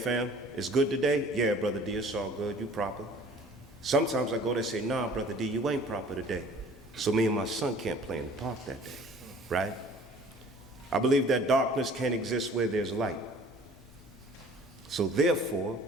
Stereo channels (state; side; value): normal; both; correlation 0.50